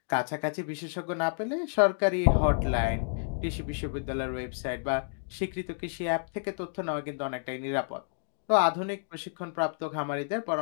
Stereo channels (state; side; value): silent; right; digital silence